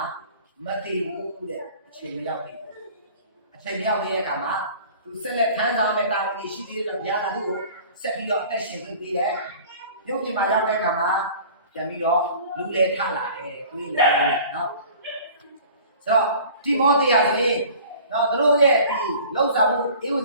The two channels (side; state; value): both; inverted; correlation -0.46